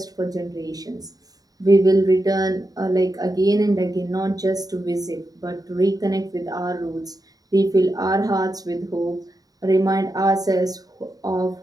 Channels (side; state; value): left; late; 0.18 ms